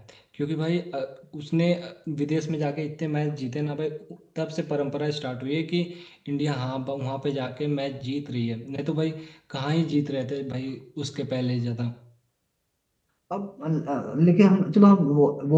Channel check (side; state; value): both; identical; correlation 1.00